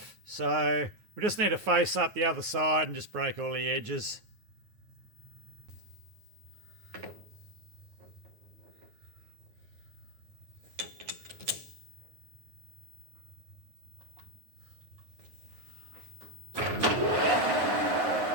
So we just need to face up the other side and just break all the edges.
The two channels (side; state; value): left; late; 9.4 ms